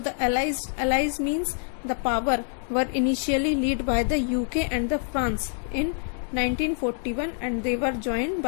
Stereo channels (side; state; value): right; silent; 55 dB below the other